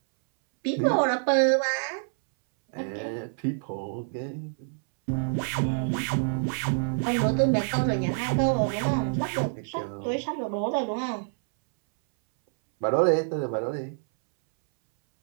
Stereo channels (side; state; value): left; silent; 60 dB below the other